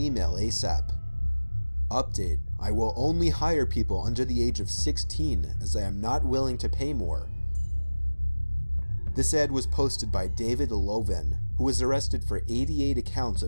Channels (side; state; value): both; inverted; correlation -1.00